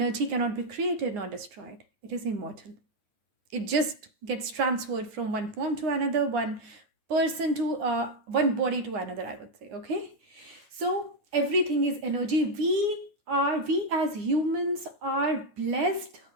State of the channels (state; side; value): late; left; 9.8 ms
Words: cannot be created nor destroyed. It is immortal. It just gets transferred from one form to another, one person to one body to another, I would say. Okay, so everything is energy. We as humans are blessed